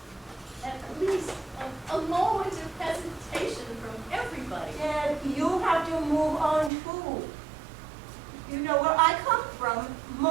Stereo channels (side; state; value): left; drops out; at 6.7 s